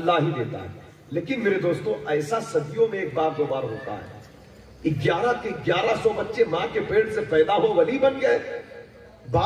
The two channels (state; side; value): identical; both; correlation 1.00